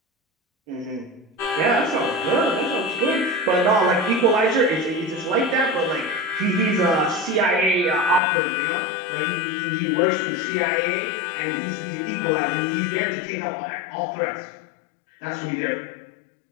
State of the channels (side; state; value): right; drops out; at 8.2 s